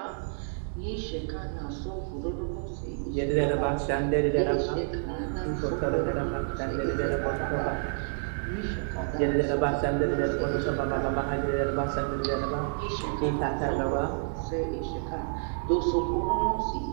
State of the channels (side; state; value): left; silent; digital silence